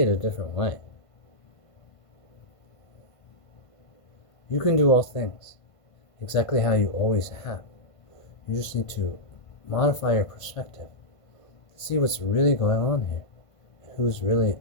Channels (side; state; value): right; late; 1.5 ms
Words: it a different way. You can do all things exactly how you always have. You just need to modify your perspective to see what's really going on here and who's really